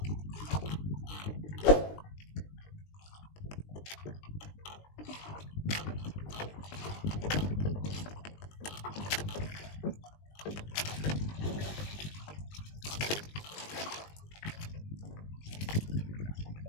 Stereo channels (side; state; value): right; late; 20 ms